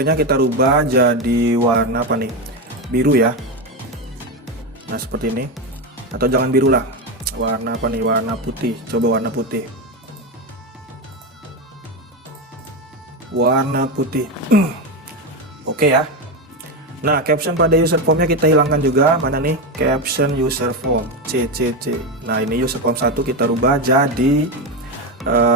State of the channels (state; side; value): normal; both; correlation 0.13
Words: kita rubah jadi warna apa nih? Biru ya. Nah, seperti ini. Atau jangan biru lah. Warna apa nih? Warna putih. Coba warna putih. Warna putih. Oke ya. Nah, caption pada user formnya kita hilangkan juga. Mana nih? Caption user form CCC. Nah, ini user form 1 kita rubah jadi